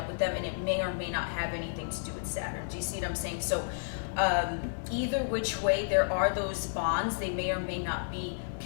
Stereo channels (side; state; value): right; silent; 56 dB below the other